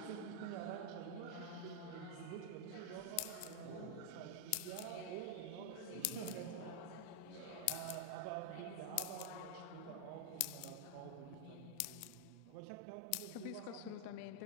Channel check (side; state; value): both; different; correlation 0.00